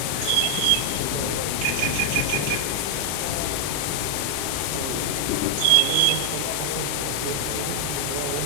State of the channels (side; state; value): both; different; correlation 0.00